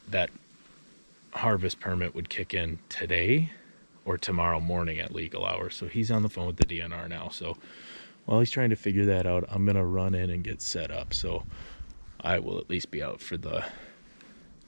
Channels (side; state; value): both; inverted; correlation -1.00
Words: that harvest permit would kick in today or tomorrow morning at legal hours. So he's on the phone with the DNR now. So while he's trying to figure that out, I'm going to run in and get set up. So I will at least be out for the